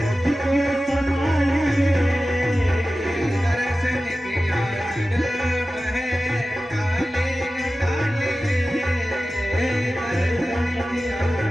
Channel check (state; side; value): normal; both; correlation 0.95